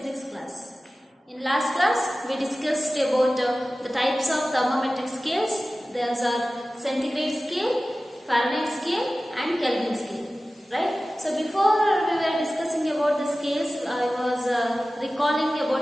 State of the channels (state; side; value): normal; both; correlation 0.96